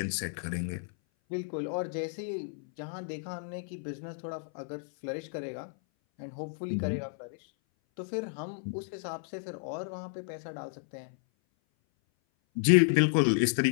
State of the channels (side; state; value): right; silent; 56 dB below the other